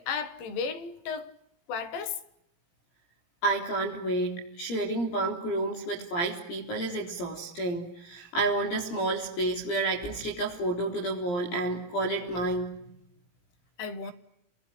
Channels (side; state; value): right; late; 17 ms